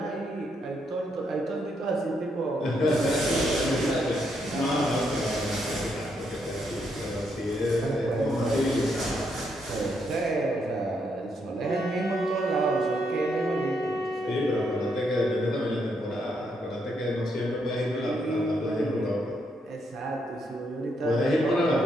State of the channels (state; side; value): normal; both; correlation 0.77